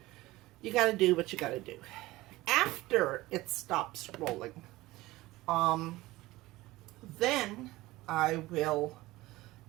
you got to do what you got to do. After it stops rolling, then I will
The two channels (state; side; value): quieter; left; 18.8 dB